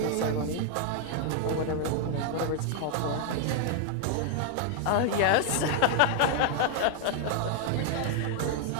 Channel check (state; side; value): different; both; correlation 0.00